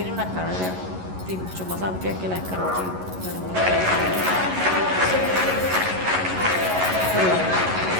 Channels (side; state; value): left; late; 11 ms